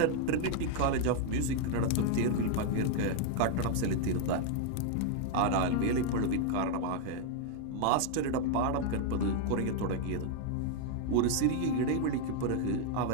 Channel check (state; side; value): different; both; correlation 0.00